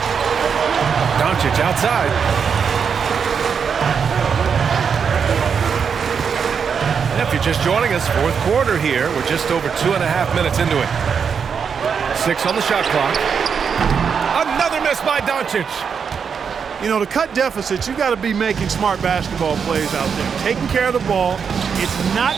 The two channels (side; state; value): left; quieter; 6.5 dB